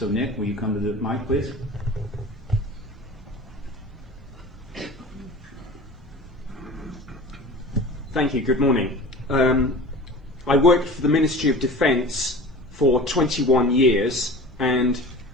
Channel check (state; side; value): normal; both; correlation 0.38